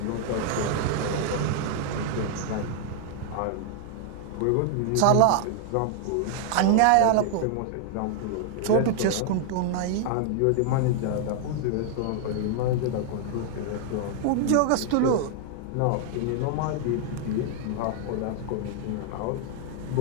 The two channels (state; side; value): different; both; correlation 0.00